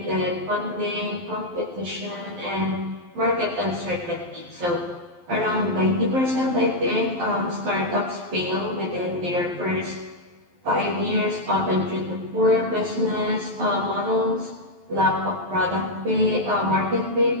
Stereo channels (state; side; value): late; left; 12 ms